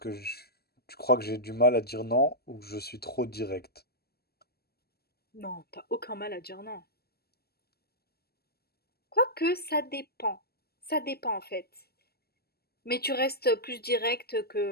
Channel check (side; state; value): right; late; 0.46 ms